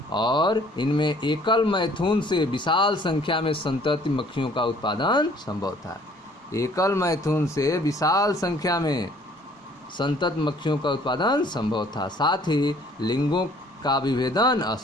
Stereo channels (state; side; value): normal; both; correlation 0.57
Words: और इनमें एकल मैथुन से विशाल संख्या में संतति मक्खियों का उत्पादन संभव था। एकल मैथुन से विशाल संख्या में संतत मक्खियों का उत्पादन संभव था। साथ ही लिंगों का विभेदन